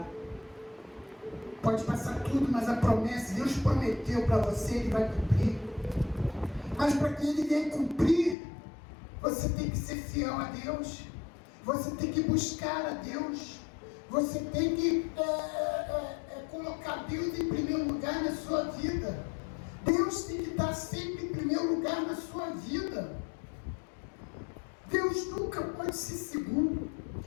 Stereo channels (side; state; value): right; drops out; at 8.3 s